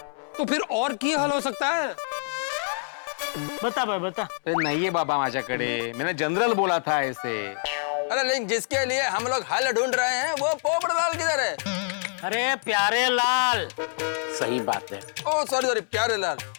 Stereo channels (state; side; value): silent; right; 61 dB below the other